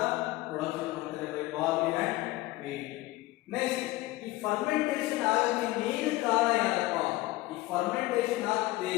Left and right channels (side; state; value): right; quieter; 18.7 dB